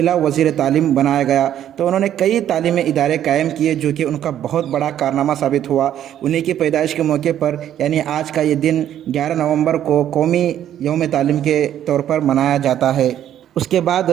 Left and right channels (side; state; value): left; quieter; 10.9 dB